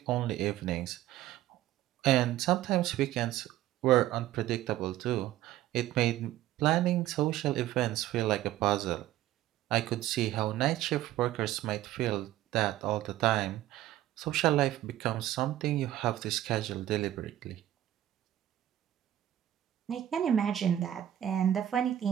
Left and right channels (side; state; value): left; quieter; 13.2 dB